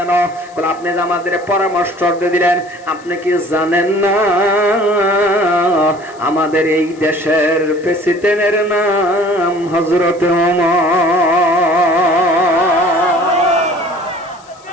বলে আপনি যে আমাদের পরামর্শ দিলেন, আপনি কি জানেন না আমাদের এই দেশের প্রেসিডেন্টের নাম হযরত ওমর?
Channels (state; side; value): noise; left; hiss, 27 dB below the sound